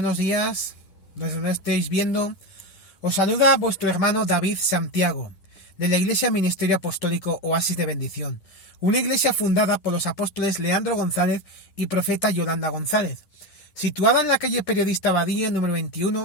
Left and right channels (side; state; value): right; late; 10 ms